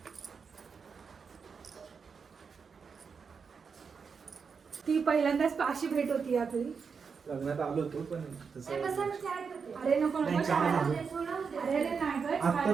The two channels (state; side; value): quieter; left; 5.7 dB